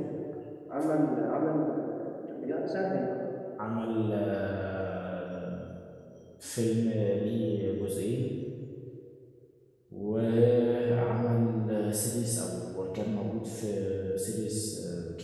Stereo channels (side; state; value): both; identical; correlation 1.00